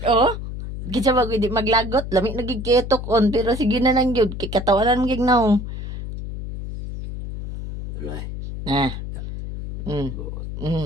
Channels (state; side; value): noise; left; hum, 7 dB below the sound